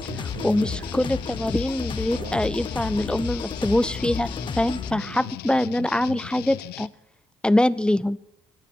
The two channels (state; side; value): normal; both; correlation 0.93